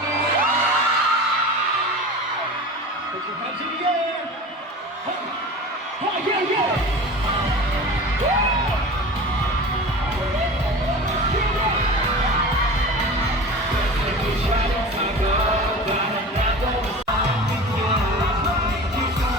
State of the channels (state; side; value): normal; both; correlation 0.34